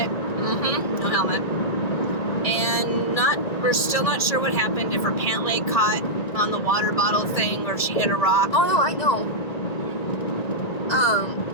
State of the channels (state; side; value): late; right; 1.9 ms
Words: No helmet. And we're still not sure what happened, if her pant leg caught on the water bottle thing or if she hit a rock. Oh no, I know.